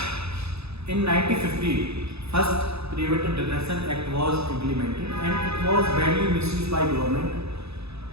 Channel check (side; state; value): left; late; 0.79 ms